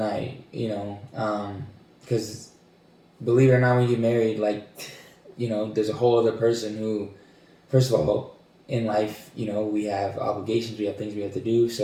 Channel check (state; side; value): identical; both; correlation 1.00